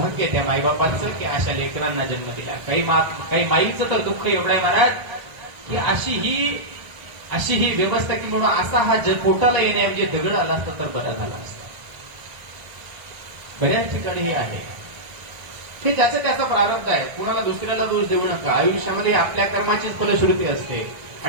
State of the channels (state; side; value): late; left; 1.4 ms